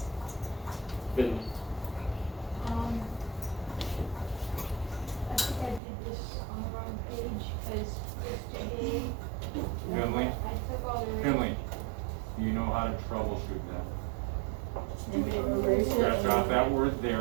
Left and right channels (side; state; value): left; drops out; at 5.8 s